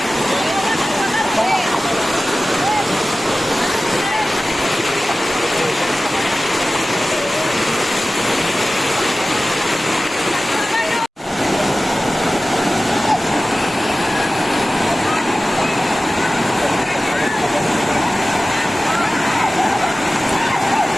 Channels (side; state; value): both; normal; correlation 0.96